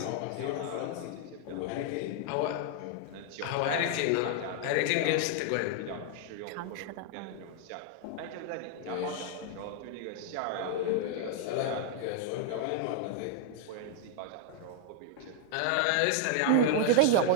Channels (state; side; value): different; both; correlation 0.00